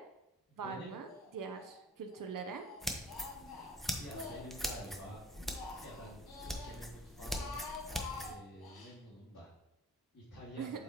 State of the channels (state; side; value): normal; both; correlation 0.49